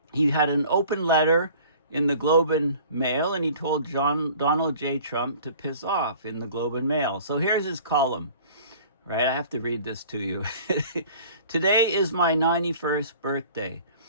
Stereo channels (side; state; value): both; inverted; correlation -0.48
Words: He had an open letter in the Globe and Mail, and he told Donald J. Trump to piss off in the Globe and Mail. So here's his column, right? I have to read this to you. Today is my 91st birthday.